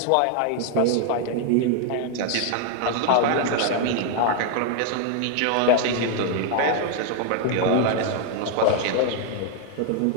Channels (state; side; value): different; both; correlation 0.01